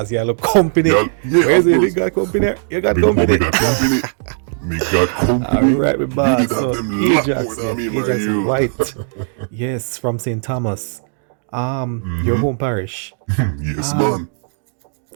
boss. You look company. Yeah, Where's of the course. got company? You got Big up, company. we got company. Me got company. Alright, my You boss. did have So, them lot Ajax, more than me, man, Ajax you. White. Yes, from St. Thomas. Your home parish. Yes, man.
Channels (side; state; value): left; silent; digital silence